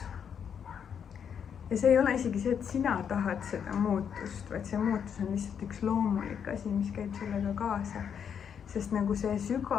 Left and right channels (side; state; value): right; quieter; 7.7 dB